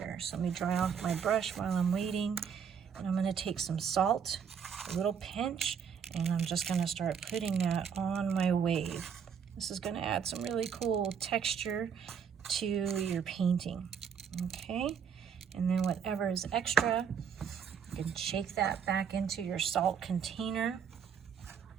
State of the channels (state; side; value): quieter; left; 7.2 dB